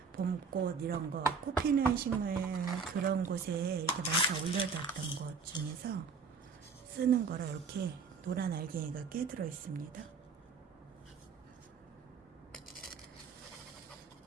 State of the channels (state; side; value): quieter; left; 5.2 dB